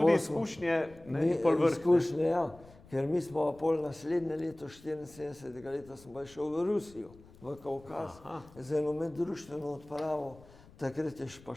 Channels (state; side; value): noise; left; rumble, 23 dB below the sound